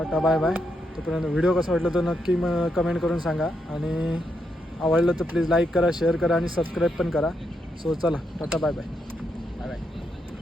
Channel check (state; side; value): normal; both; correlation 0.81